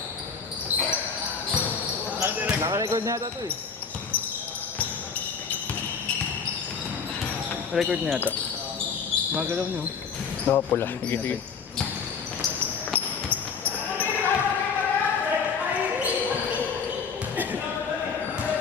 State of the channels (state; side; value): quieter; right; 5.9 dB